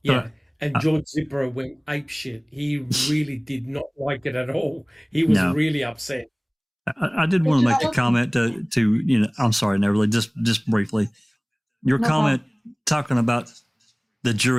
Yeah. And George Zipper went apeshit. He really did not like it at all. He was really upset. I did want to make a comment to I'm sorry, Neverly, just briefly. Your comment talking about the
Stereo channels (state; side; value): identical; both; correlation 1.00